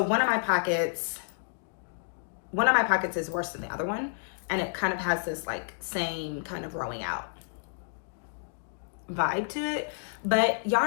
of my pockets is worse than the other one, and it kind of has this like same kind of rowing out vibe to it, but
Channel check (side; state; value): right; silent; digital silence